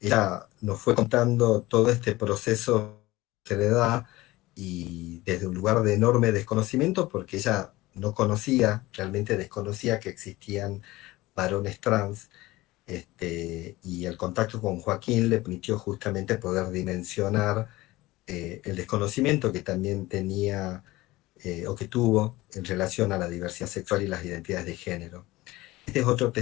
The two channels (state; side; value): quieter; right; 19.0 dB